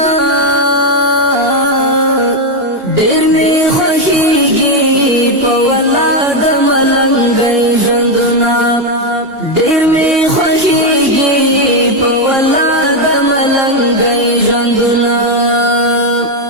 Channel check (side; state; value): left; late; 2.8 ms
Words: ډېر می خوښیږي په ولا د ملنګي ژوندونه ډېر می خوښیږي په ولا د ملنګي ژوندونه